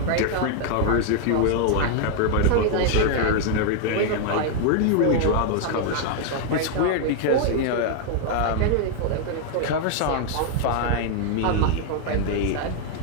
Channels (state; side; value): different; both; correlation 0.00